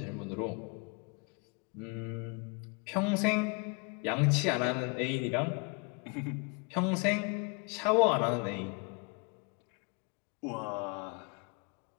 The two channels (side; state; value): right; quieter; 32.8 dB